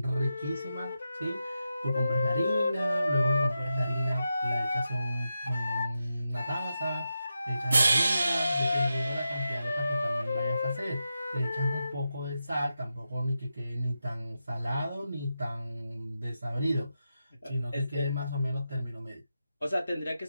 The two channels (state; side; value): inverted; both; correlation -0.88